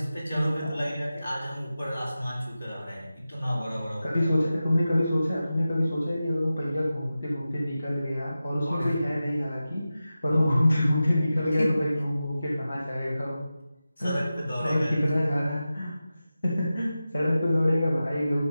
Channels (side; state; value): both; inverted; correlation -0.94